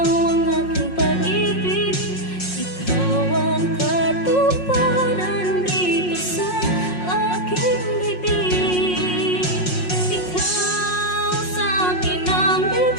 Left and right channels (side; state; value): right; late; 5.5 ms